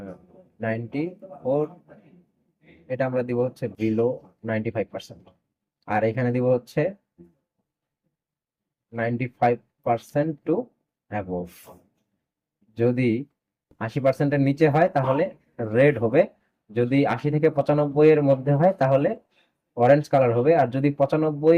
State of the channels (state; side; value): identical; both; correlation 1.00